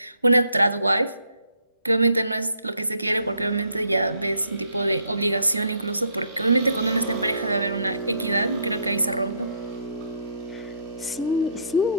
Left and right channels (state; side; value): inverted; both; correlation -0.68